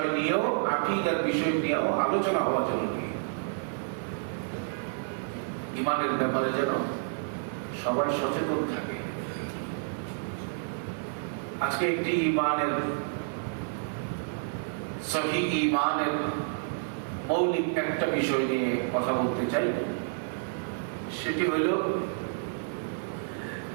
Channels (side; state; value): left; silent; 55 dB below the other